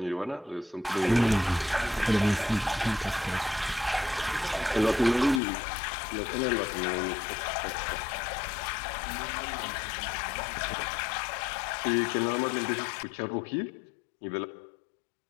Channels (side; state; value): right; drops out; at 5.4 s